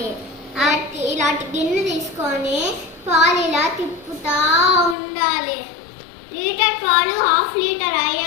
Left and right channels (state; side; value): drops out; right; at 5.0 s